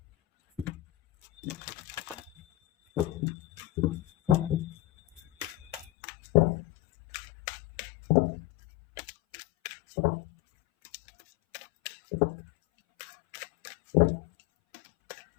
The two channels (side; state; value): right; drops out; at 5.9 s